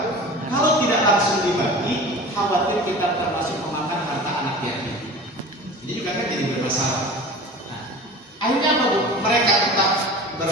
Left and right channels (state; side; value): normal; both; correlation 0.37